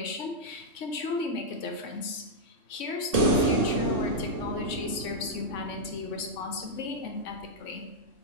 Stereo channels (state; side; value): late; right; 3.5 ms